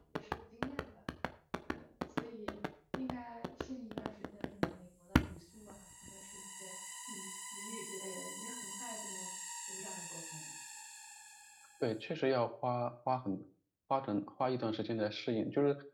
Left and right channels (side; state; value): both; identical; correlation 1.00